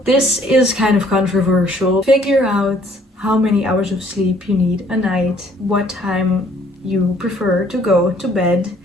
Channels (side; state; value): both; normal; correlation 0.61